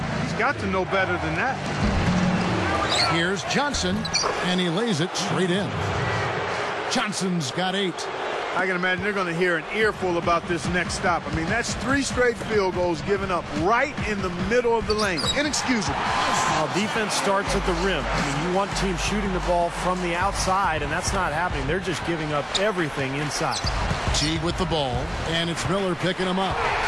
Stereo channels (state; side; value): identical; both; correlation 1.00